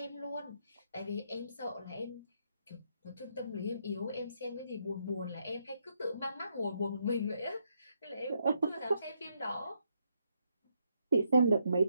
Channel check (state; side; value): inverted; both; correlation -0.77